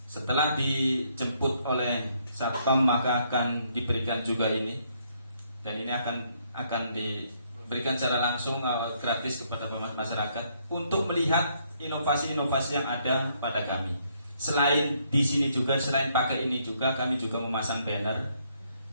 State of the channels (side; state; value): both; inverted; correlation -0.71